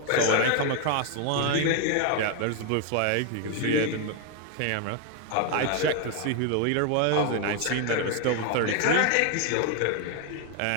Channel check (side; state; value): both; different; correlation 0.01